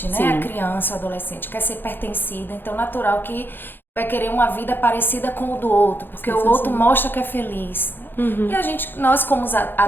né? Sim. A criança, o adolescente. Quer ser pertencida. Então, natural que vai querer uma vida parecida com o do outro. Porque o outro mostra que é feliz. E nós como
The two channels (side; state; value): right; late; 0.098 ms